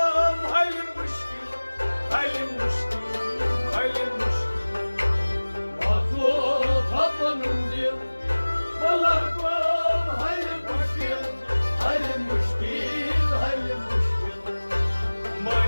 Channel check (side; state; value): both; inverted; correlation -1.00